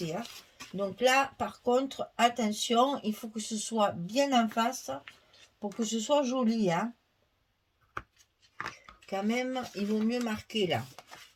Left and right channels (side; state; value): both; identical; correlation 1.00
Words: Hein. Donc là, par contre, attention, il faut que ce soit bien en face pour que ce soit joli. Hein. Quand même, il vaut mieux marquer là.